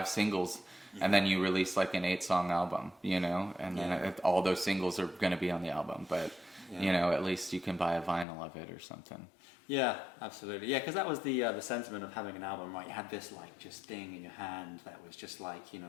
singles, and then you release like an 8-song album, you know, and then all those singles are going to be on the album. But you know, at least you can buy a vinyl of it or something. Yeah, absolutely. Yeah, because that was the sentiment of having an album, right? You had this like just thing in your hand that was just like, you know,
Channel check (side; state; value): right; drops out; at 8.2 s